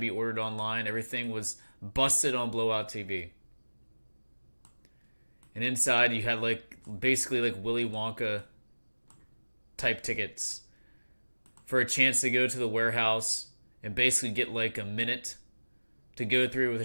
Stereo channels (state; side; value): inverted; both; correlation -1.00